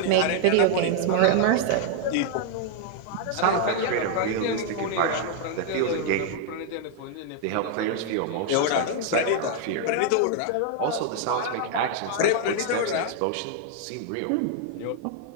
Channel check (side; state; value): both; different; correlation 0.00